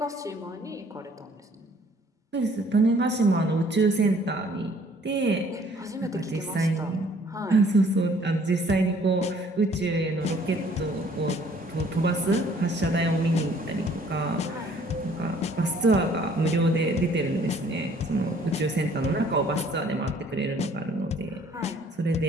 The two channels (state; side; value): normal; both; correlation 0.58